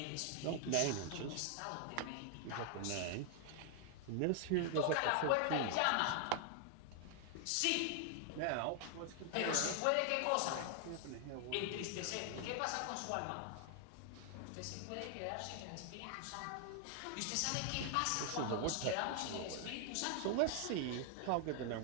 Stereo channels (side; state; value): both; different; correlation 0.00